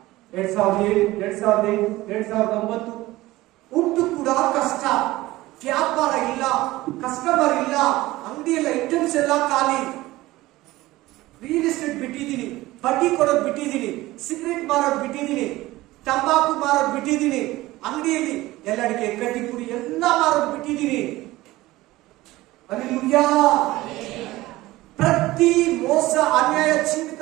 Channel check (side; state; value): left; quieter; 18.1 dB